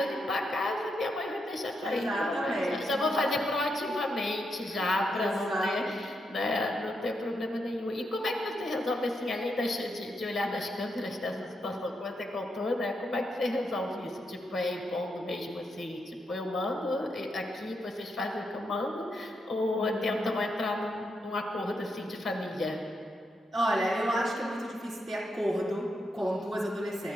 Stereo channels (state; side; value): normal; both; correlation 0.82